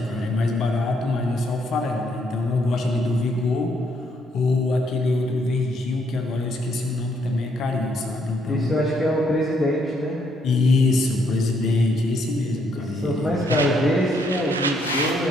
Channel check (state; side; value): normal; both; correlation 0.72